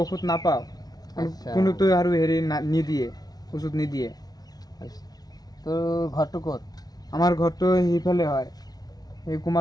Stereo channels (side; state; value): right; late; 0.19 ms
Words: ঔষধ নাপাওঁ কোনোতো আৰু হেৰি নিদিয়ে ওষুধ নিদিয়ে তোৰ ঘৰটো ক'ত আমাৰ ঘৰটো সেইফালে হয় এই